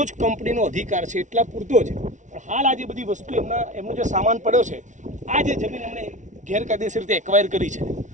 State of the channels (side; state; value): left; late; 0.36 ms